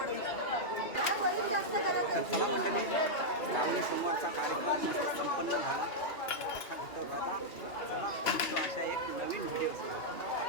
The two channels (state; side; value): late; right; 2.5 ms